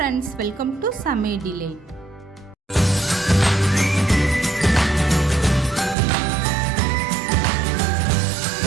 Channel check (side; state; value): left; drops out; at 6.0 s